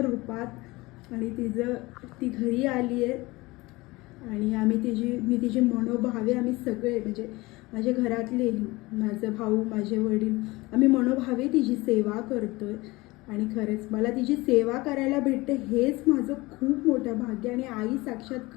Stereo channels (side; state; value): right; quieter; 21.7 dB